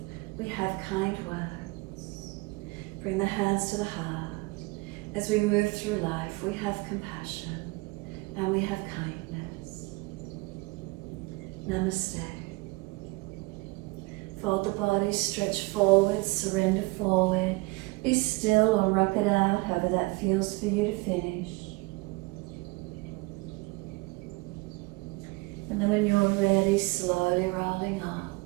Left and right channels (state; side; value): quieter; left; 24.6 dB